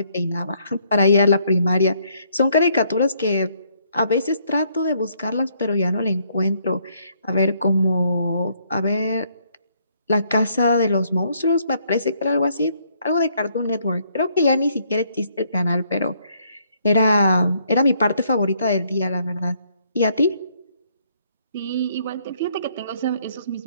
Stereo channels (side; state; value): both; inverted; correlation -0.69